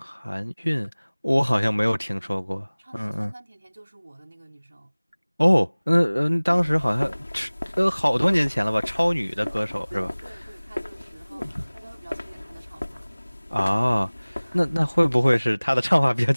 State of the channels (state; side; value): inverted; both; correlation -1.00